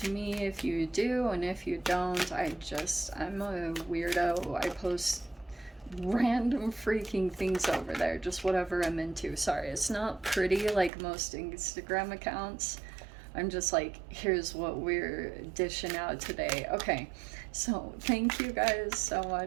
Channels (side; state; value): left; drops out; at 10.9 s